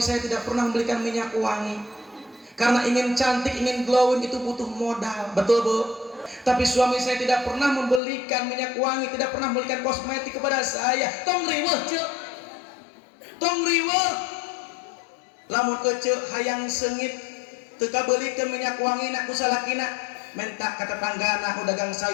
saya tidak pernah membelikan minyak wangi. Karena ingin cantik, ingin glowing itu butuh modal. Betul Bu? Tapi suami saya tidak pernah membelikan minyak wangi, tidak pernah membelikan kosmetik kepada saya. Tong riweuh ceu. Tong riweuh. Lamun ece hayang seungit teu kabelikeun minyak wangi na ku salakina, menta ka tetanggana nu dagang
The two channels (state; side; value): drops out; right; at 8.0 s